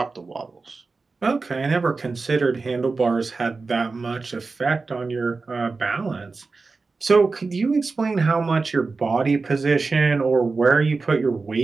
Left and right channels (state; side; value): quieter; left; 4.1 dB